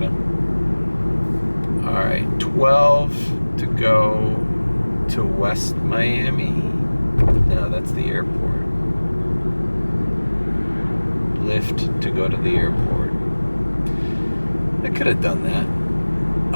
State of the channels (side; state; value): both; inverted; correlation -1.00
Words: All right, 12 to go to West Miami. No, that's the airport. Lyft to go to the airport. I could have done that.